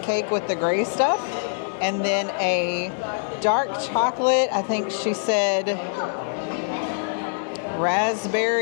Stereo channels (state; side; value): silent; right; 62 dB below the other